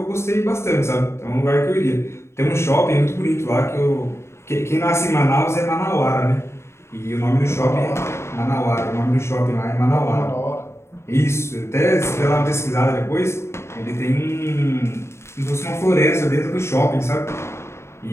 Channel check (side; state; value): right; late; 0.13 ms